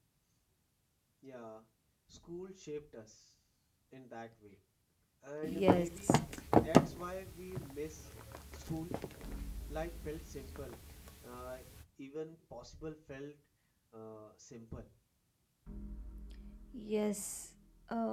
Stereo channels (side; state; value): both; identical; correlation 1.00